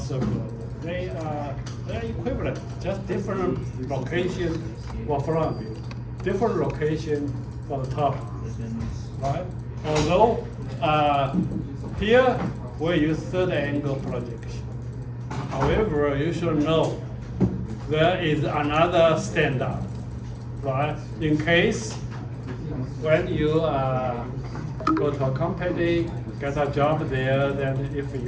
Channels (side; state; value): both; identical; correlation 1.00